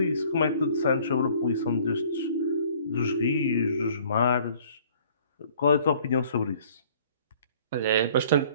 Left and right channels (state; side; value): inverted; both; correlation -0.54